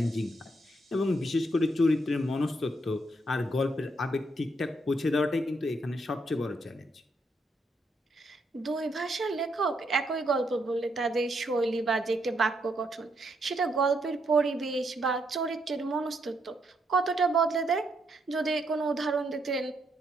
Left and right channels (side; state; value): both; normal; correlation 0.76